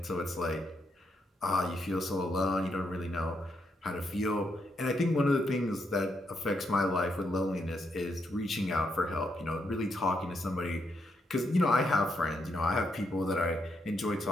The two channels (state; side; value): normal; both; correlation 0.79